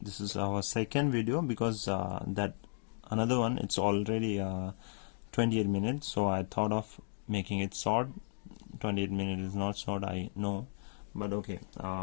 is our second video because that another one it's already 28 minutes, so I thought of making it short. 28 minutes is not short, I know, but okay.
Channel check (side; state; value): right; silent; digital silence